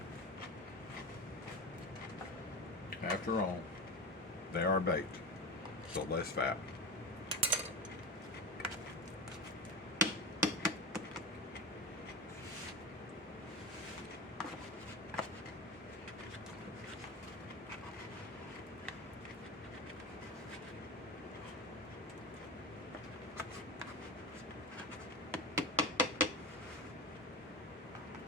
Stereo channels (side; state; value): both; normal; correlation 0.22